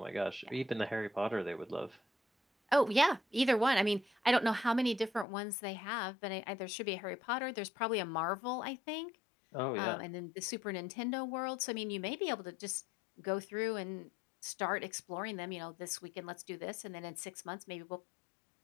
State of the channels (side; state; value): right; drops out; at 5.2 s